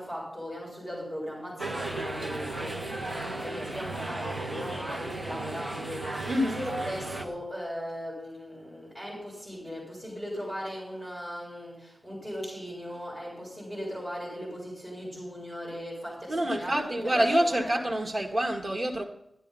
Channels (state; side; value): normal; both; correlation 0.93